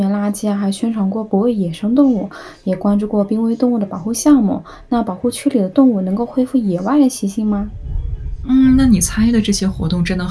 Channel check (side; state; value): both; identical; correlation 1.00